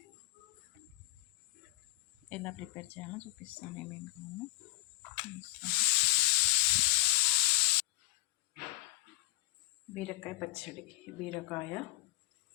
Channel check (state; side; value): quieter; right; 20.5 dB